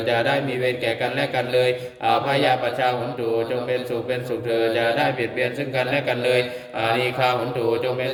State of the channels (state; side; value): identical; both; correlation 1.00